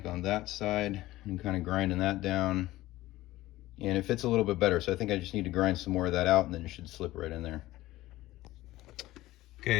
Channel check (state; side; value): quieter; right; 16.8 dB